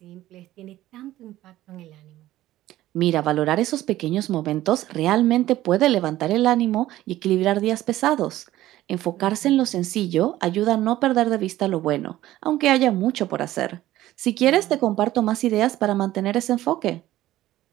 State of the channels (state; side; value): quieter; left; 15.0 dB